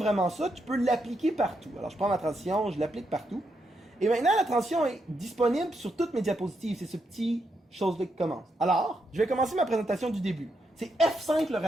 ça, tu peux l'appliquer partout. Alors, je prends ma transition, je l'applique partout. Et maintenant, la transition est disponible sur toutes mes diapositives. C'est ce petit chose-là qui commence. Alors, je vais commencer ma présentation du début. C'est F5 le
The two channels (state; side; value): normal; both; correlation 0.81